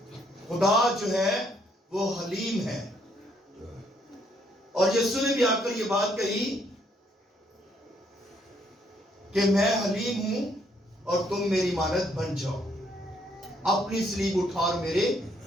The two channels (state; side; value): normal; both; correlation 0.70